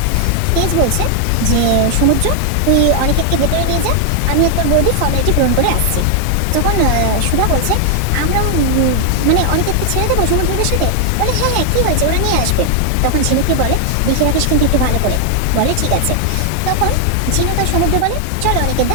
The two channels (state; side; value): different; both; correlation 0.00